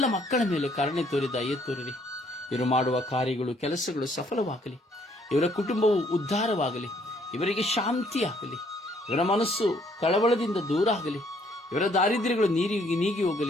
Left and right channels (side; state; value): both; normal; correlation 0.66